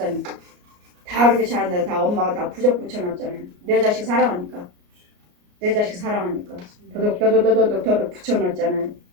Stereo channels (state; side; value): late; left; 33 ms